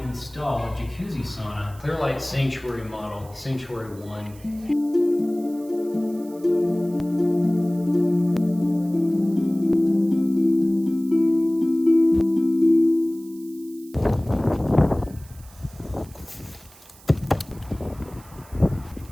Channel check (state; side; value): noise; right; hiss, 24 dB below the sound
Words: install a jacuzzi sauna, Clearlight Sanctuary model, Sanctuary 1.